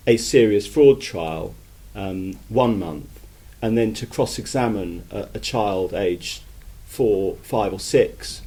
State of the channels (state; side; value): identical; both; correlation 1.00